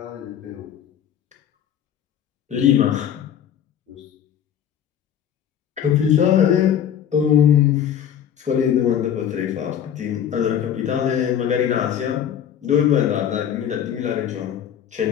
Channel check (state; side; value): quieter; right; 9.4 dB